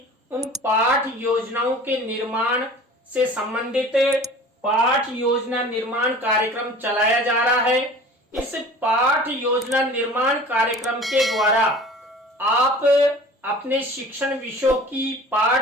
उन पाठ योजनाओं के निर्माण से संबंधित पाठ योजना निर्माण कार्यक्रम चलाया जा रहा है। इस पाठ योजना निर्माण कार्यक्रम के द्वारा आप अपने शिक्षण विषयों की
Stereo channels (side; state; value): both; normal; correlation 0.43